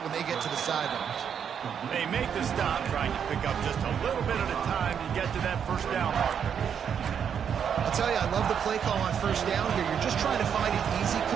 when they get to the sidelines. They make the stop, trying to pick up just a little bit at a time to get to that 1st down marker. I'll tell you, I love the play call on 1st down here. You're just trying to find an easy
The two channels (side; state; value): left; quieter; 7.8 dB